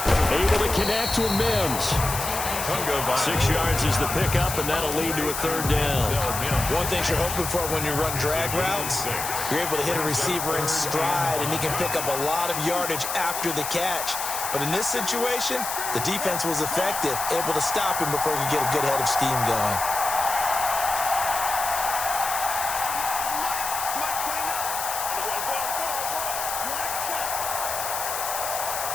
Able to connect with Mims. 6 yards is the pickup, and that'll lead to a 3rd down. One thing you're hoping for when you run drag routes, you're able to hit a receiver in stride, and he can pick up a lot of yardage after the catch. But in this situation, the defense was effective, able to stop him before he could get a good head of steam going.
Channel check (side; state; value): left; noise; hiss, 4 dB below the sound